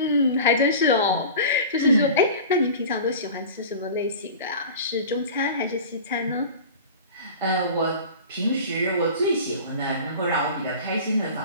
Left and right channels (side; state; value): both; inverted; correlation -0.36